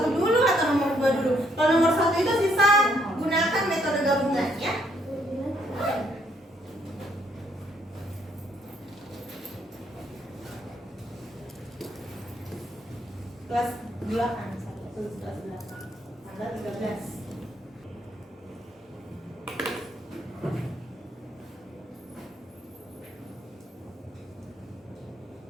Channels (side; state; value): both; normal; correlation 0.71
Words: dulu atau nomor 2 dulu. Kalau nomor 1 itu sisa gunakan metode gabungan ya. Kelas 8, kelas 8. Tanggal 13.